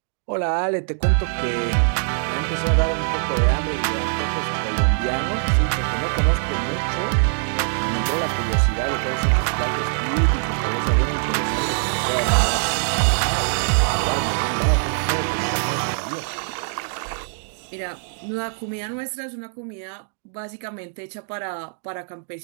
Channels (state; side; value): silent; left; 64 dB below the other